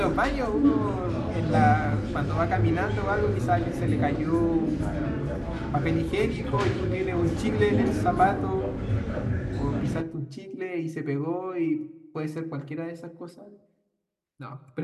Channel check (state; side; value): identical; both; correlation 1.00